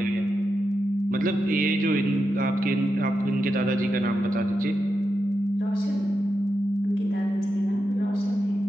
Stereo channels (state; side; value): normal; both; correlation 0.87